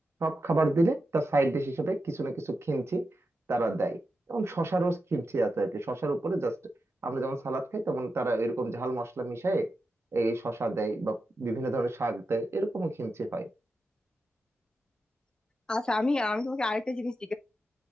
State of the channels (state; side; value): normal; both; correlation 0.89